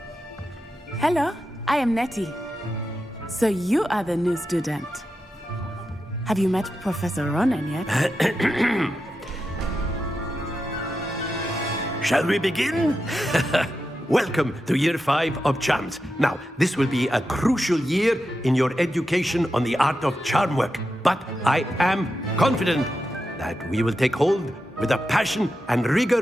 Hello, I am Nettie. So you are the new student. Have you met Professor Ronan yet? Shall we begin? Welcome to Year 5 of Charms. Now, this will be a crucial year in your education on the art of charm work. But I am confident that we will take hold with the passion and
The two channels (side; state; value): both; normal; correlation 0.89